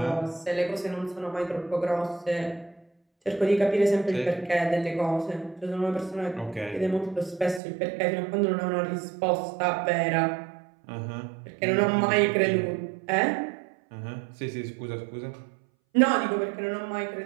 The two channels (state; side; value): drops out; left; at 7.6 s